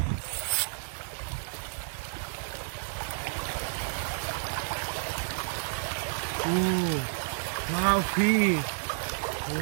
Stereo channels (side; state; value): left; silent; 57 dB below the other